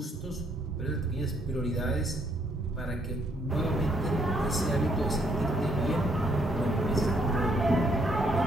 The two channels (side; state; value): both; normal; correlation 0.71